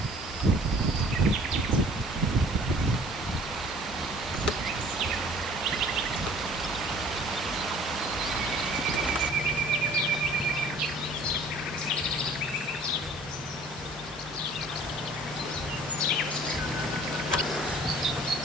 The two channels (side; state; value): both; normal; correlation 0.52